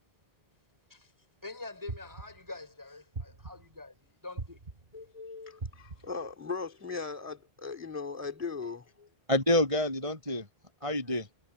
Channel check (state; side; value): late; left; 1.5 ms